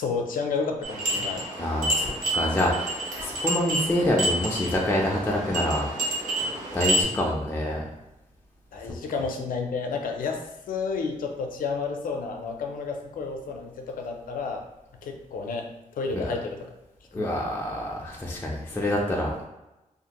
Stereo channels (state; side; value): normal; both; correlation 0.55